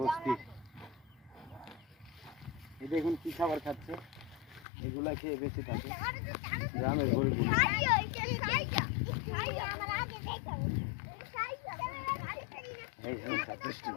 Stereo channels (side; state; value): right; drops out; at 4.7 s